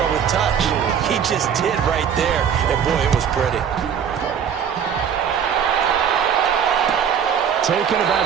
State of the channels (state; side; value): quieter; left; 7.9 dB